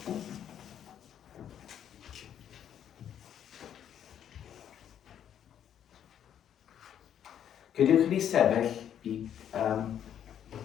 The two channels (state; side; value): quieter; right; 9.7 dB